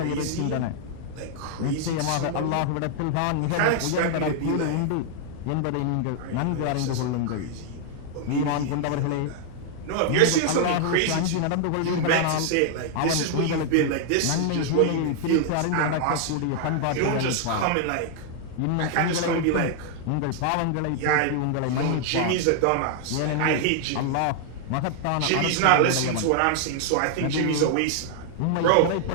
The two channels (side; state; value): both; different; correlation 0.00